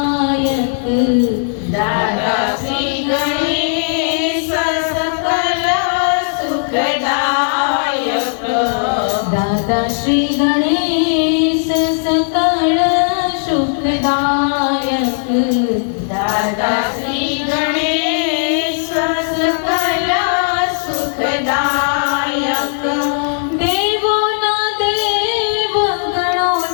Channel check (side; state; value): right; silent; digital silence